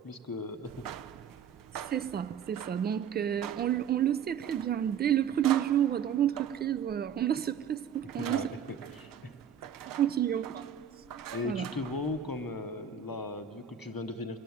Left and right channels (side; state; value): left; quieter; 7.9 dB